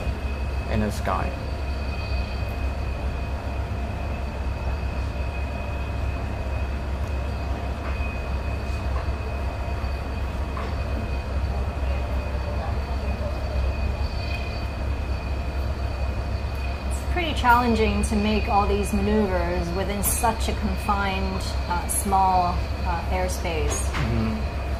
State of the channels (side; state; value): both; identical; correlation 1.00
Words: in the sky. Pretty challenging to make all these maneuvers within such a confined, small airspace.